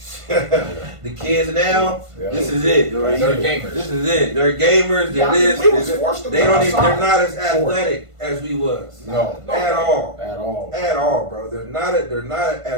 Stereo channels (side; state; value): left; late; 1.5 ms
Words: The kids now, Yeah. this is it. They're gamers. This is it. They're gamers. They're Yeah, this. we was they're forced to they go don't even, outside. they're not as athletic as we was. No, At all. at all, At all, bro. They're not